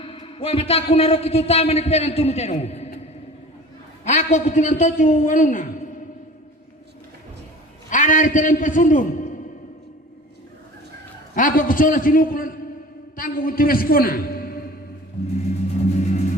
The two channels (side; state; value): both; normal; correlation 0.41